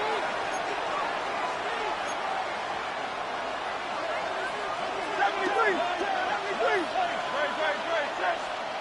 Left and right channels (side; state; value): both; identical; correlation 1.00